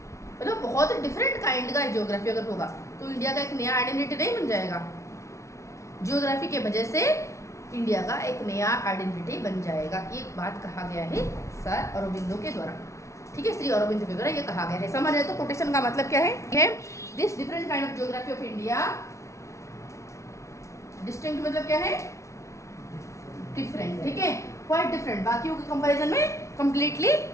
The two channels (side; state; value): right; late; 0.14 ms